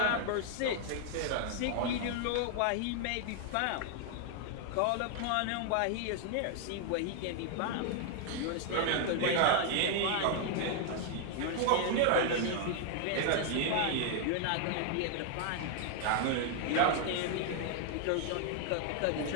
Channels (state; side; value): different; both; correlation 0.00